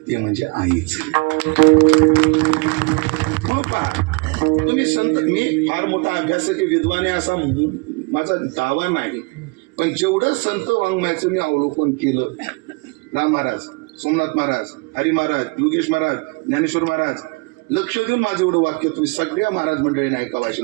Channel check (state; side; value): quieter; left; 29.6 dB